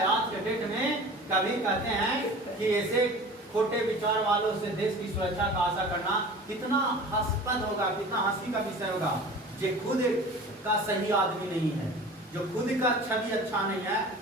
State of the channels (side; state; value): both; normal; correlation 0.40